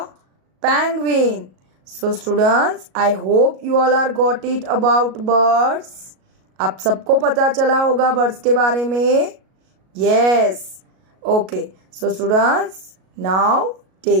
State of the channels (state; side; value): late; left; 37 ms